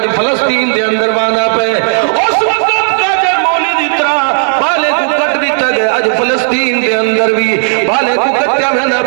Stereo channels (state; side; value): silent; left; 65 dB below the other